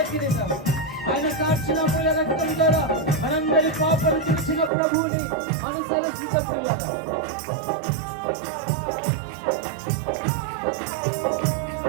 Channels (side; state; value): left; drops out; at 4.7 s